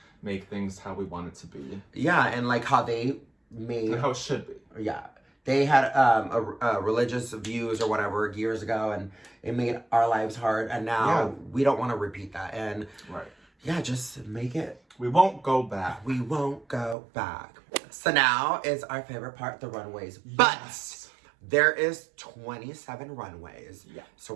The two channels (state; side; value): drops out; left; at 16.9 s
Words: make things how we want it to be. Yeah, and like how they made... And how it should be. Yeah. They had religious views or whatever years ago, and it made our lives hard, and now we don't want to repeat that. And yeah, just make it... We won't go back. We won't go back. So now is our favorite part, the runways. Yes. But there is 27 runways. Yeah. So